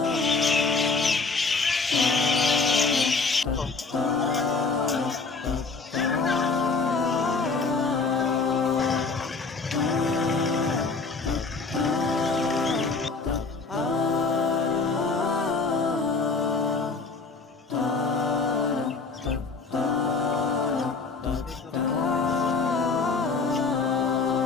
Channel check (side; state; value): right; quieter; 4.2 dB